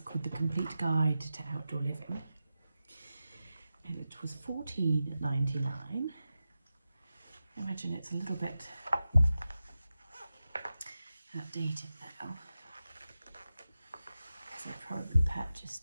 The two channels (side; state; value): both; inverted; correlation -0.92